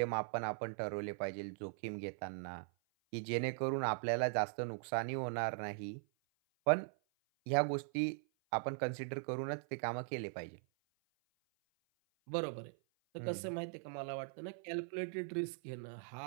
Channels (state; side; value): silent; left; 51 dB below the other